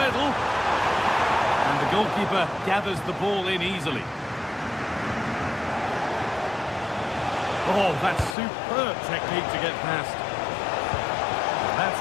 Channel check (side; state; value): right; drops out; at 8.3 s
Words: And the goalkeeper gathers the ball in easily. Oh, that's superb technique to get past. That's